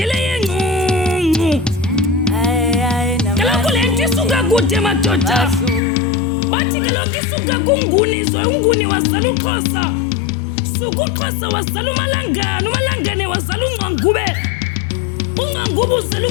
yengqungqu. Kaloku le nto isuka kude madoda. Bathi kaloku isuka kunguni unguni wazala uXhosa. Suka uXhosa wazala uMalangane, uMalangane wazala uNgqangube. uNgqangube uzala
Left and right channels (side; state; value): right; drops out; at 5.8 s